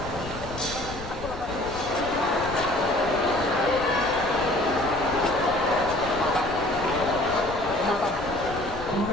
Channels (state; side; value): noise; left; rumble, 12 dB below the sound